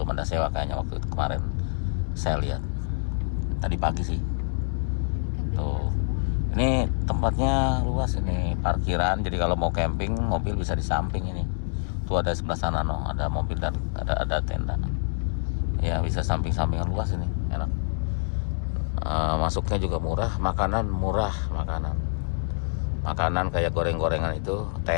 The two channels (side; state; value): right; silent; digital silence